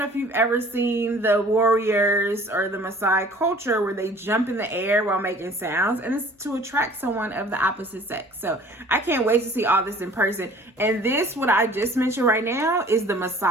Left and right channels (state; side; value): normal; both; correlation 0.50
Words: if you've ever seen the warriors or the Maasai culture where they jump in the air while making sounds, and it's to attract someone of the opposite sex. So I can't wait to see all this in person. And this, what I just mentioned right now, is the